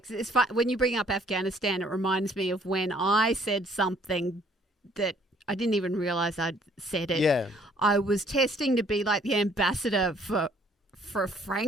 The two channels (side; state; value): both; normal; correlation 0.61